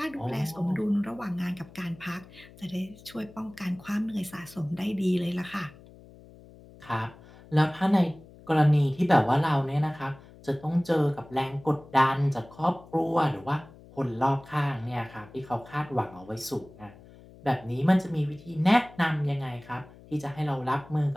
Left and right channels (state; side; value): noise; left; hum, 21 dB below the sound